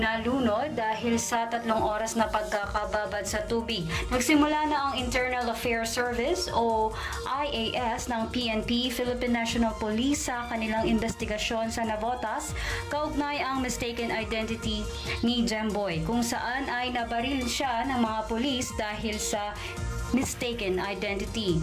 dahil sa 3 oras na pagkakababad sa tubig. Nagsimula na ang Internal Affairs Service o IAS ng PNP, Philippine National Police sa kanilang investigasyon sa Navotas kaugnay ang mistaken identity ni Jemboy, kung saan ay nabaril siya ng mga pulis dahil sa mistaken identity.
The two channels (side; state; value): both; identical; correlation 1.00